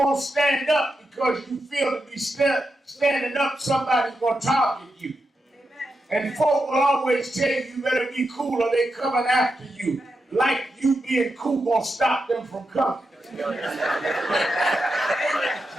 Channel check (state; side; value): normal; both; correlation 0.87